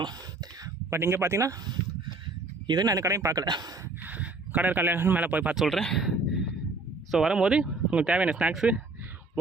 பட் இங்கே பார்த்தீங்கன்னா இது நான் அந்த கடையும் பார்க்கல, கடை இருக்காங்க மேலே போய் பார்த்து சொல்கிறேன். ஸோ வரும்போது உங்களுக்கு தேவையான ஸ்நாக்ஸு,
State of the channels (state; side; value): quieter; left; 3.4 dB